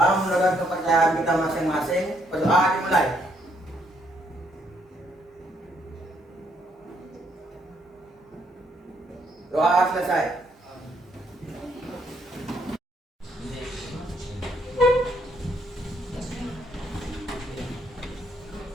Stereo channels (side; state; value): both; normal; correlation 0.72